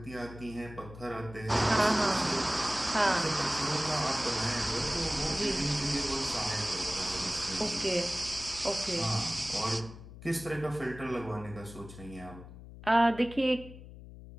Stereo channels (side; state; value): left; noise; hum, 15 dB below the sound